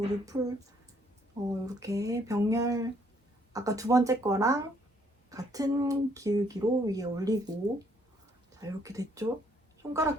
이렇게 병렬, 아까 두 번째 거랑 같은 기울기로 위에 올리고, 자, 이렇게 됐죠?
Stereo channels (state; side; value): normal; both; correlation 0.67